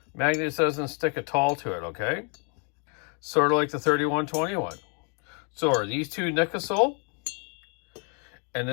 Magnet doesn't stick at all to it, okay? Sort of like the 3121. So are these two nickelsil? And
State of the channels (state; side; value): quieter; right; 38.0 dB